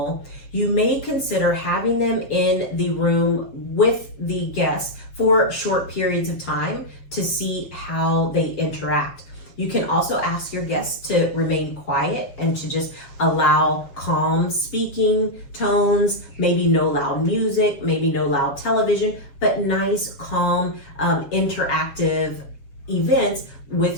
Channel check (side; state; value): right; late; 7.3 ms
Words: you may consider having them in the room with the guests for short periods of time to see how they interact. You can also ask your guests to remain quiet and to just allow calm speaking tones, maybe no loud music, maybe no loud television, but nice, calm, interactive events